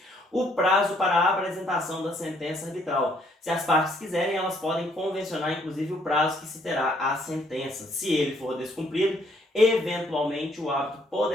O prazo para a apresentação da sentença arbitral. Se as partes quiserem, elas podem convencionar inclusive o prazo que se terá a sentença. Se ele for descumprido, eventualmente o árbitro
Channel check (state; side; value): normal; both; correlation 0.67